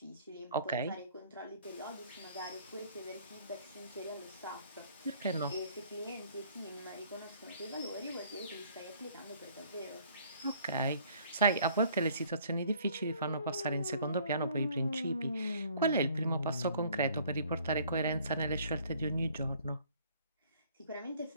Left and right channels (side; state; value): both; inverted; correlation -0.58